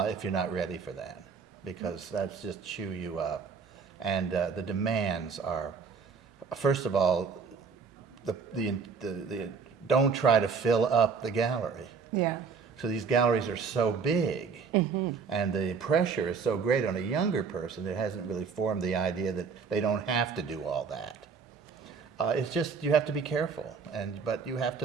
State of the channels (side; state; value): left; quieter; 5.6 dB